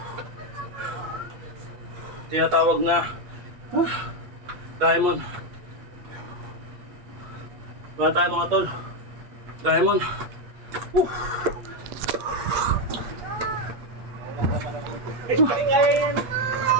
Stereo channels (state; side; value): late; left; 8.4 ms